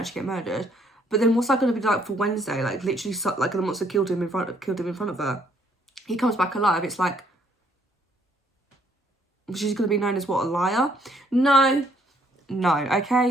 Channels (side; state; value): both; normal; correlation 0.67